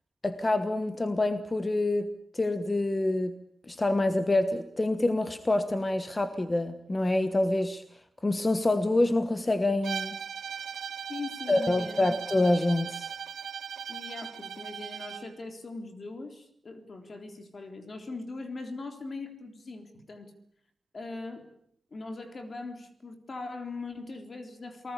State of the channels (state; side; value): normal; both; correlation 0.95